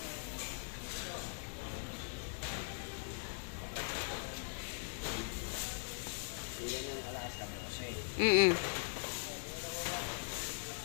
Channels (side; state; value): right; silent; digital silence